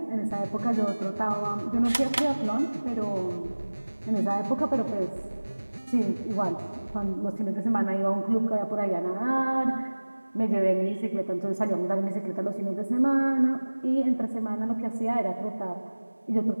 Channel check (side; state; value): both; inverted; correlation -1.00